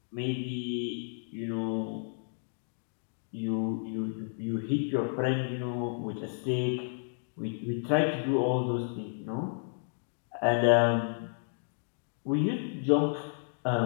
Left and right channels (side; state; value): right; silent; digital silence